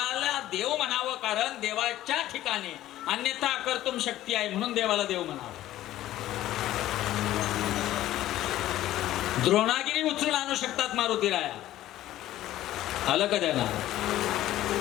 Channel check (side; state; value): right; quieter; 14.1 dB